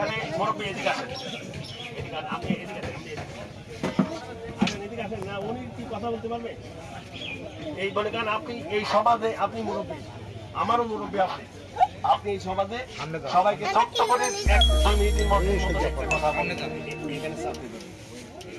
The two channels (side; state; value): both; identical; correlation 1.00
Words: মুরব্বী এদিকে আসেন, আপনি এদিকে আসেন না, উনি কি কথা বলতে পারবে এই বলে? কারণ আপনি এই সমাজে আপনি মুরব্বী, আমারও মুরব্বী আপনি। আপনি এই সমাজে সবাইকে ছোট্ট করে এক 2 মিনিটের মধ্যে কথা বলেন।